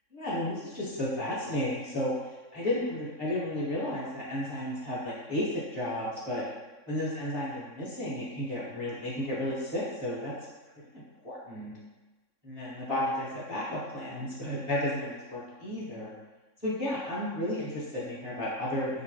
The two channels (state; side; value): late; left; 3.6 ms